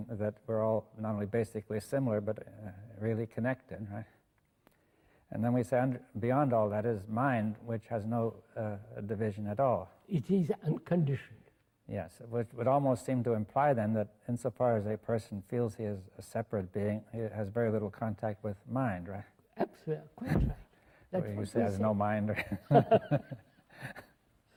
that we're all not only basically similar, but really connected, right? And then we say beyond all that is mind, which has no division at all. It is unconditioned. Yes, which would almost seem to imply then that insofar as a person feels he is a separate being, he has very little contact with mind, right? Absolutely, quite right. That's you what say has no mind.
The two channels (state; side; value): identical; both; correlation 1.00